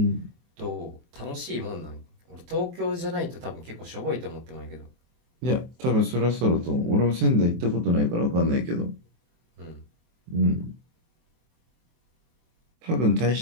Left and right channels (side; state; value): left; late; 24 ms